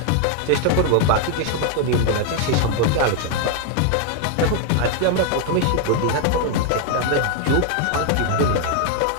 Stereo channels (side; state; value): both; different; correlation 0.00